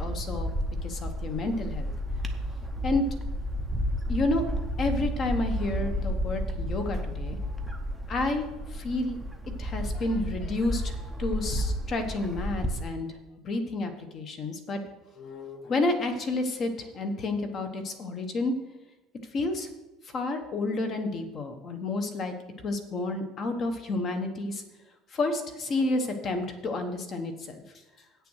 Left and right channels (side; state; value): both; normal; correlation 0.65